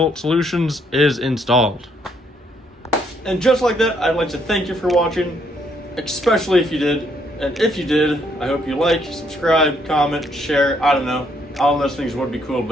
solutions is installed. And just like that, I'd like to thank you for watching, especially if you did. And if you did, I hope you like, subscribe, comment, share. I don't know. All those things would be cool,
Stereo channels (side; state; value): both; normal; correlation 0.71